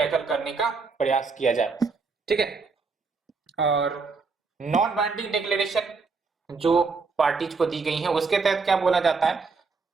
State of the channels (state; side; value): quieter; left; 4.5 dB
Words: करने का प्रयास किया जाए। ठीक है, और नॉन बाइंडिंग डिक्लेरेशन जो पार्टीज को दी गई है, उसके तहत क्या बोला जाता है,